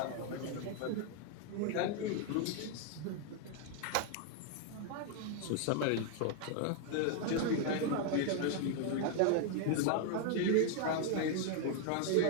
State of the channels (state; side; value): different; both; correlation 0.00